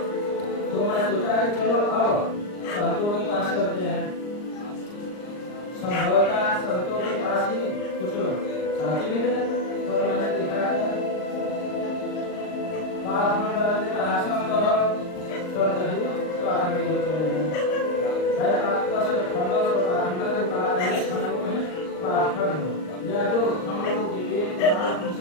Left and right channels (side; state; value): right; late; 39 ms